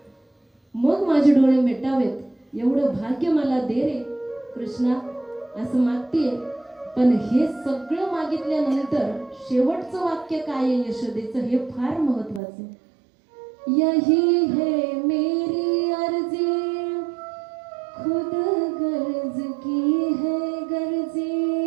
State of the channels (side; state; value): left; drops out; at 12.4 s